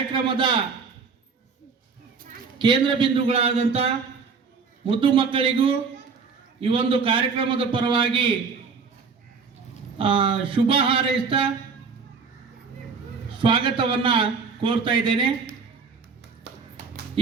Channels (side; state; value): left; quieter; 5.2 dB